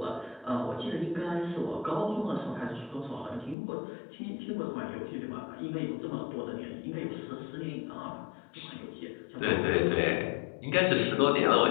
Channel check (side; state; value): right; drops out; at 3.6 s